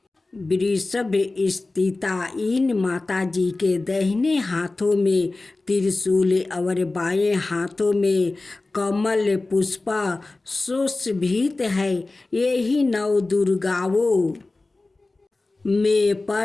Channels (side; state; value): right; quieter; 3.2 dB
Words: वृषभ स्थिता इन माताजी के दाहिने हाथों में त्रिशूल और बाएं हाथों में कमल पुष्प सुशोभित है। यही 9 दुर्गाओं में